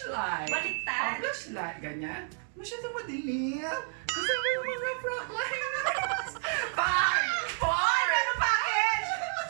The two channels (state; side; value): silent; left; 57 dB below the other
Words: Baliktad. Flashlight. Ganyan. Masyadong madilim. Kasi may mga frontliners. 5, 4. Meron package!